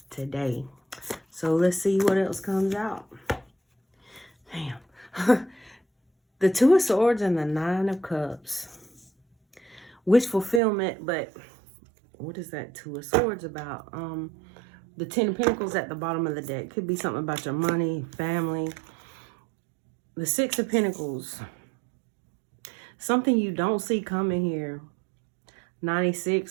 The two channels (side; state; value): left; drops out; at 10.6 s